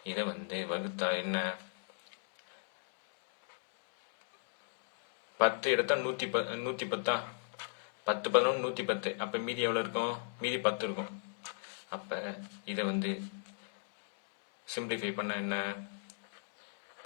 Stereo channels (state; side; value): silent; right; digital silence